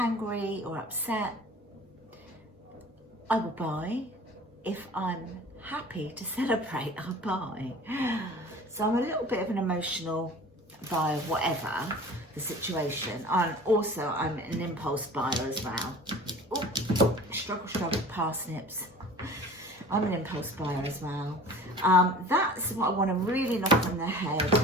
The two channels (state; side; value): normal; both; correlation 0.42